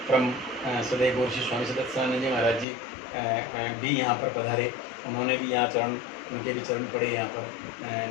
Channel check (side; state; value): right; drops out; at 2.7 s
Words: परम सदैव गौर श्री स्वामी सदत्यानंद जी महाराज जी भी यहाँ पर पधारे, उन्होंने भी यहाँ चरण, उनके भी चरण पड़े यहाँ पर।